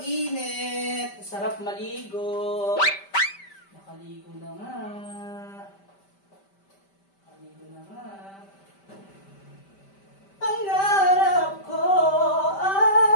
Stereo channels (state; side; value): late; right; 5.1 ms